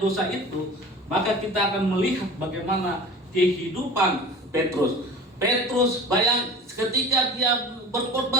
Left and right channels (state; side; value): normal; both; correlation 0.39